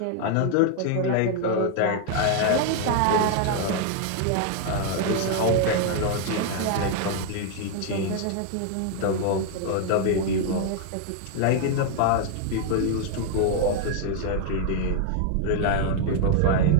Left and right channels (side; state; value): both; different; correlation 0.00